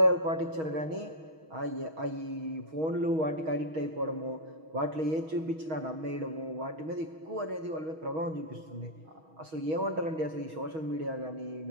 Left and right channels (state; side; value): late; left; 6.3 ms